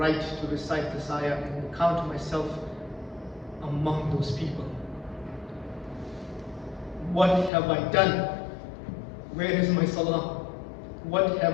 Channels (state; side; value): drops out; right; at 7.5 s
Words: to recite this ayah and count myself among those people? What have I done? Where is my salah? What